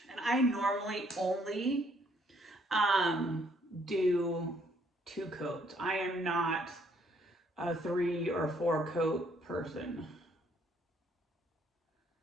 And I normally only do 2 coats. I am not a 3 or 4 coat person.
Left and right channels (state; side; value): normal; both; correlation 0.66